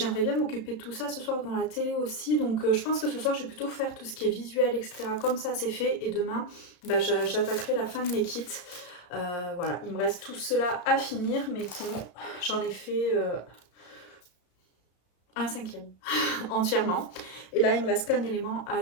bien m'occuper de tout ça ce soir dans la télé aussi. Donc je pense que ce soir je vais plutôt faire tout ce qui est visuel etc. Comme ça c'est fait et demain j'attaquerai la fin de mes kits. Voilà, il me reste tout cela à finir mais sinon j'en ai fait un cinquième entièrement. Et là il me reste qu'un élément à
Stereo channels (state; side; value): late; right; 34 ms